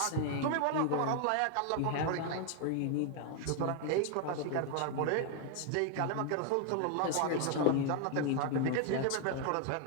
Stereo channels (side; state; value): both; different; correlation 0.00